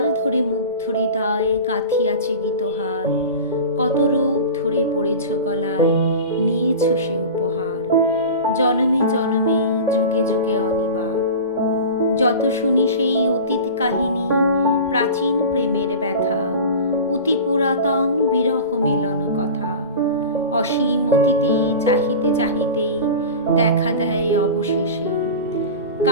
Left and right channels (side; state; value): both; inverted; correlation -0.32